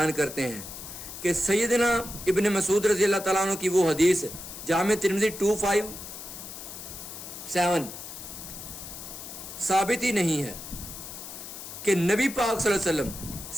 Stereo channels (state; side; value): noise; left; hiss, 11 dB below the sound